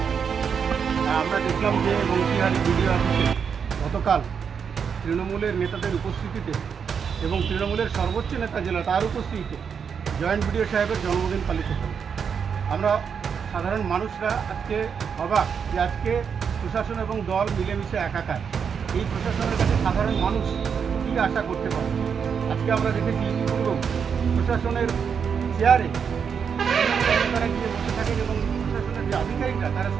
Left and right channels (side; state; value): left; quieter; 6.7 dB